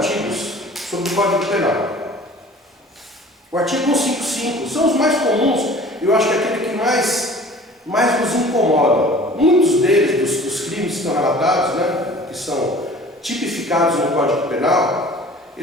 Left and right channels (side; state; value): both; normal; correlation 0.46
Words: sobre o Código Penal. O artigo 155 são os mais comuns, eu acho que é aquele que mais nos incomoda. Muitos deles, dos crimes que estão relatados, né, que são tipificados no Código Penal,